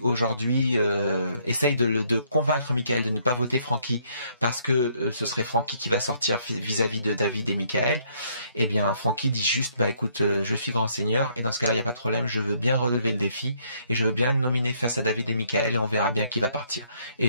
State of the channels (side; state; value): both; inverted; correlation -0.68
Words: aujourd'hui, essaye de convaincre Michael de ne pas voter Francky parce que ce serait Francky qui va sortir vis-à-vis de David et Michael, eh bien Francky dit juste écoute, je suis grand seigneur et dans ce cas-là il n'y a pas de problème, je veux bien relever le défi et je veux bien nominer face à David et Michael et on verra bien qui va partir.